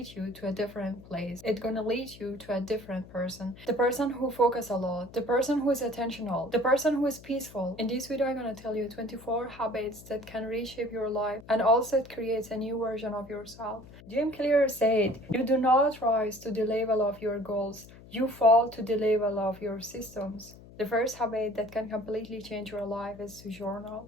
you to a different place. It's going to lead you to a different person. The person who focus a lot, the person who is attentional, the person who is peaceful. In this video, I'm going to tell you 24 habits that can reshape your life, and also it creates a new version of yourself. Jim Clear said, you do not rise to the level of your goals, you fall to the level of your systems. The first habit that can completely change your life is to journal.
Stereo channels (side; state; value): left; noise; hum, 20 dB below the sound